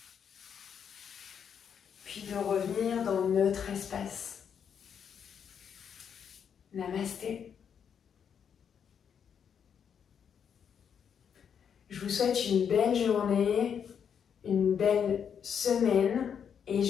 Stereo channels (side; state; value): right; quieter; 7.7 dB